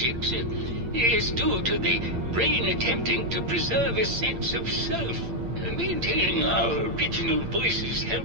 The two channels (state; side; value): late; left; 8.7 ms